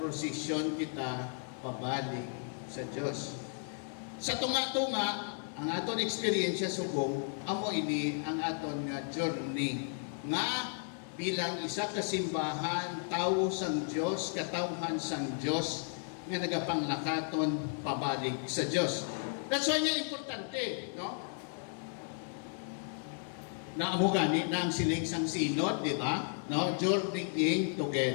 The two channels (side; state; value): right; silent; 55 dB below the other